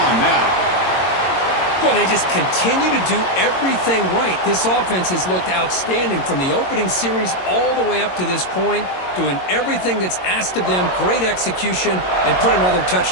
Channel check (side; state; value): right; late; 22 ms